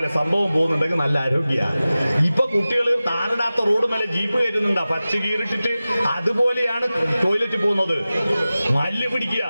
സംഭവം പോകുന്നുണ്ടെങ്കിൽ നല്ല ആരോഗ്യമാണ്. ഇപ്പൊ കുട്ടികൾ താറിടാത്ത റോഡ് മേലെ ജീപ്പ് കയറ്റുന്നുണ്ടാ, പക്ഷി കീറിട്ടിട്ട്. അതുപോലെയാണ് ടോയ്ലറ്റ് പോകുന്നത്. മല്ല് പിടിക്കുക.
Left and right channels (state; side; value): inverted; both; correlation -0.96